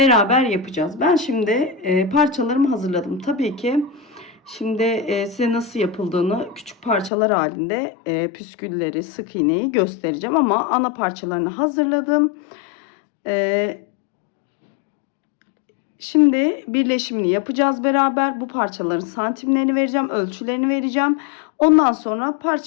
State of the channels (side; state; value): right; drops out; at 7.1 s